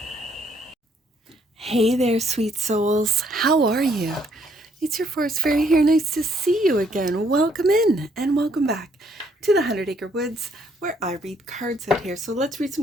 Hey there, sweet souls. How are you? It's your forest fairy here. Nice to see you again. Welcome in and welcome back to the 100 Acre Woods, where I read cards out here. So let's read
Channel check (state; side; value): normal; both; correlation 0.68